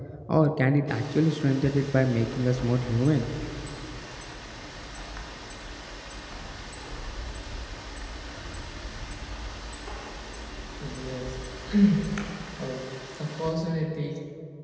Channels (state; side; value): identical; both; correlation 1.00